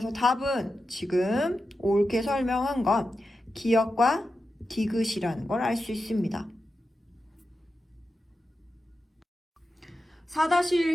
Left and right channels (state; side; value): normal; both; correlation 0.90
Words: 답은 지금 옳게 설명한 건 기역과 디귿이라는 걸 알 수 있습니다.